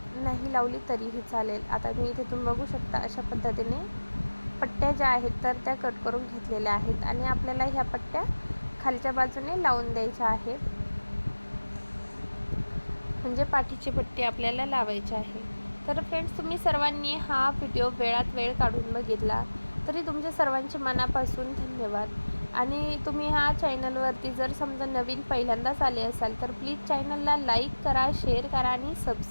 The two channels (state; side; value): inverted; both; correlation -1.00